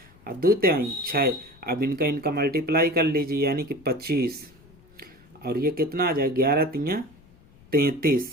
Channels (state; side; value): noise; left; rumble, 26 dB below the sound